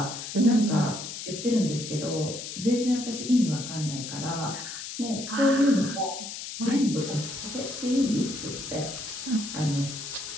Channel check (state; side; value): noise; left; hiss, 8 dB below the sound